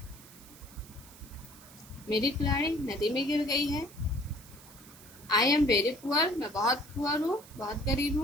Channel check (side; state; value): right; noise; hiss, 21 dB below the sound